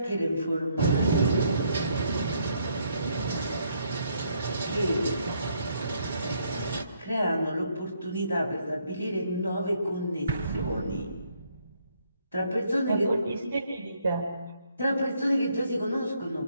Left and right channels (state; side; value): inverted; both; correlation -0.71